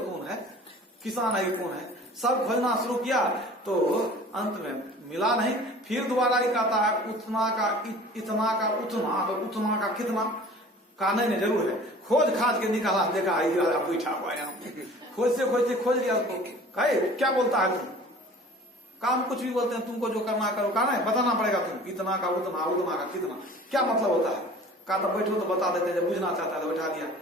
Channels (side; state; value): both; normal; correlation 0.45